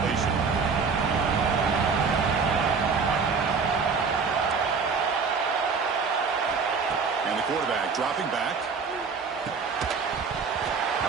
And the quarterback dropping back.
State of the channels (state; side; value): quieter; left; 5.2 dB